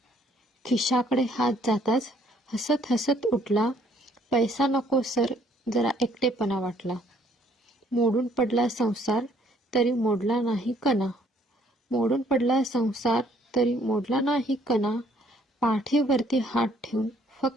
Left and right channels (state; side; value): normal; both; correlation 0.64